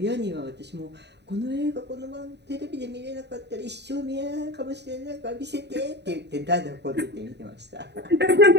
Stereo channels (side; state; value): left; late; 0.50 ms